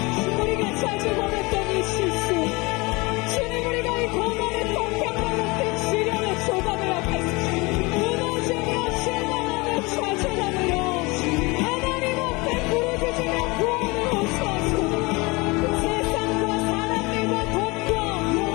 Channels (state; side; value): quieter; right; 25.3 dB